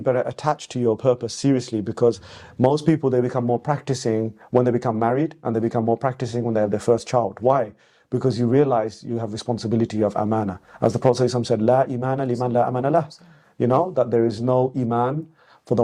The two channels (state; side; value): identical; both; correlation 1.00